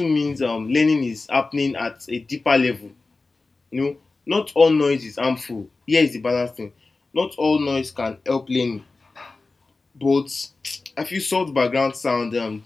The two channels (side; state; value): right; quieter; 3.6 dB